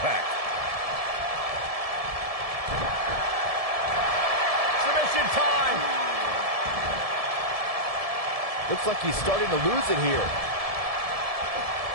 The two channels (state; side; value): late; left; 1.7 ms